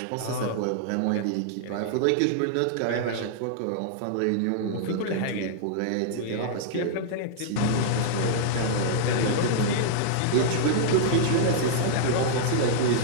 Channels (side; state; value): both; different; correlation -0.01